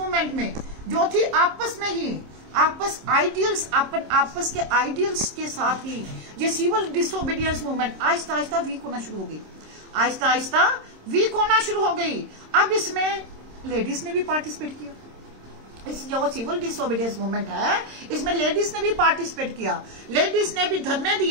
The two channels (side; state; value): left; late; 26 ms